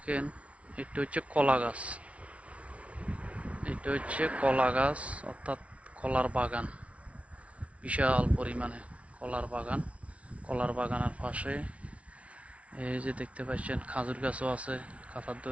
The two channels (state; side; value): late; left; 0.063 ms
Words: এটা হচ্ছে কলা গাছ, এটা হচ্ছে কলা গাছ অর্থাৎ কলার বাগান, বিশাল পরিমাণে কলার বাগান। কলার বাগানের পাশে এই যে দেখতে পাচ্ছেন খাজুর গাছও আছে কাঁথার